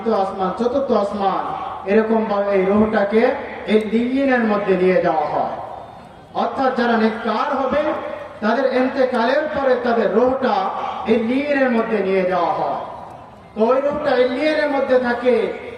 আসমান, চতুর্থ আসমান, এরকম ভাবে এই রূহটাকে এই লিগিনের মধ্যে নিয়ে যাওয়া হয়। অর্থাৎ যারা নেককার হবে তাদের ইন্তেকালের পরে তাদের রূহটা এই লিগিনের মধ্যে নিয়ে যাওয়া হয়। তো ওই রূহটা এই লিগিনের মধ্যে থাকে,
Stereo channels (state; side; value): identical; both; correlation 1.00